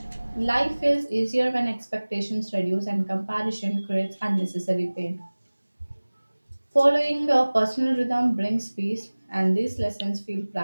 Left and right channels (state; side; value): inverted; both; correlation -1.00